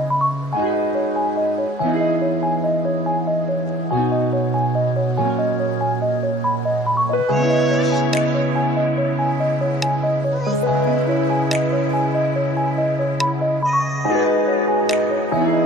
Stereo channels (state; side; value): normal; both; correlation 0.56